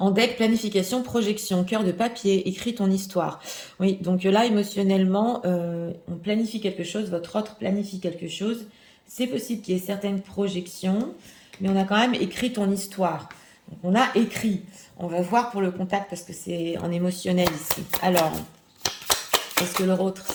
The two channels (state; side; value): identical; both; correlation 1.00